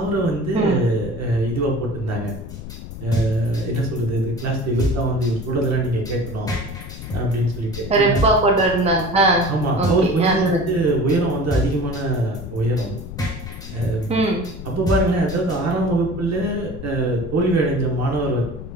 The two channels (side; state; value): left; noise; rumble, 11 dB below the sound